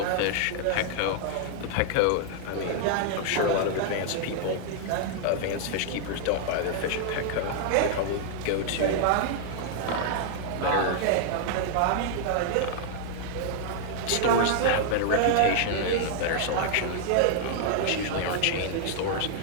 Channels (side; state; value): both; different; correlation -0.01